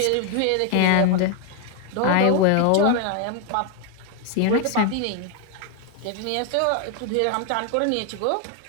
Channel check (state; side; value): different; both; correlation 0.00